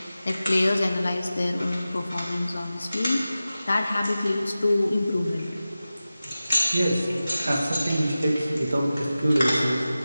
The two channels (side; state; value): both; inverted; correlation -0.95